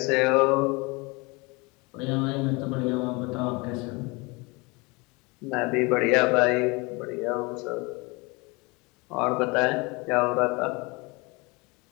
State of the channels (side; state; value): right; quieter; 26.9 dB